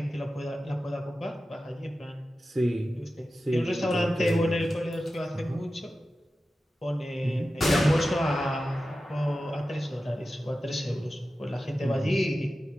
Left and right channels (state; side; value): normal; both; correlation 0.93